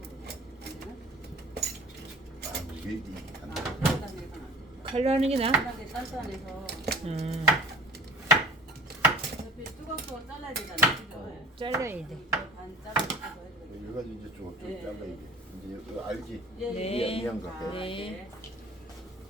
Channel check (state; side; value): normal; both; correlation 0.45